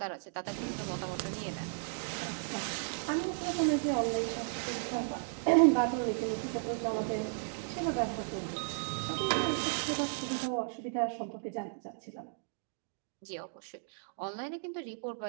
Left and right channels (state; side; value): silent; left; digital silence